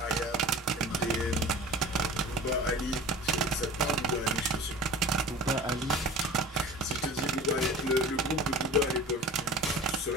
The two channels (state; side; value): normal; both; correlation 0.39